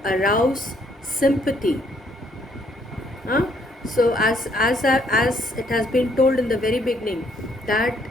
arouse sympathy. So as it has been told in the very beginning, that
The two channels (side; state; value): both; normal; correlation 0.68